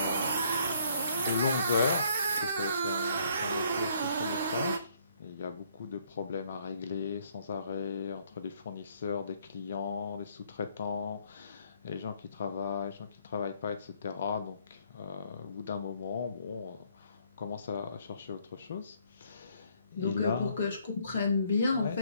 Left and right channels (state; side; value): inverted; both; correlation -0.65